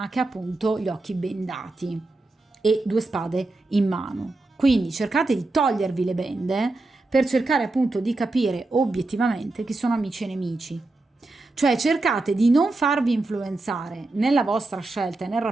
che ha appunto gli occhi bendati e 2 spade in mano. Quindi cercate di togliervi le bende per cercare appunto di capire obiettivamente chi sono amici e nemici. Cioè cercate di non farvi influenzare nella vostra scelta e nel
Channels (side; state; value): left; quieter; 3.1 dB